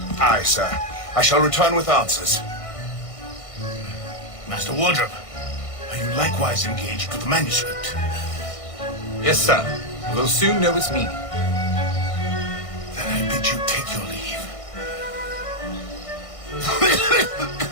Aye, sir. I shall return with answers. Master Wardrobe, are you likewise engaged with the manuscript? Yes, sir. We'll soon know its meaning. Then I bid you take your leave.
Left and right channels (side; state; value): right; late; 1.6 ms